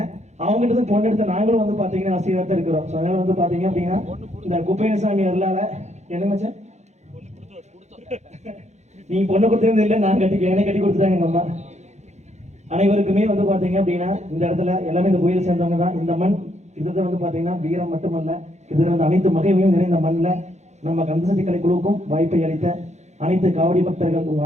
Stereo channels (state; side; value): late; left; 0.33 ms